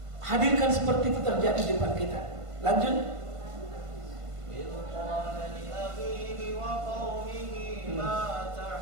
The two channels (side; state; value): left; late; 1.5 ms